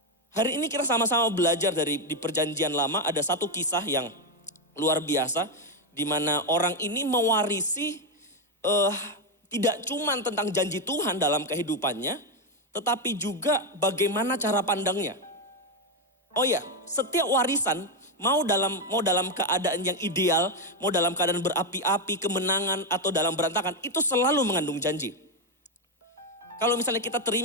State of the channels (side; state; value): both; normal; correlation 0.05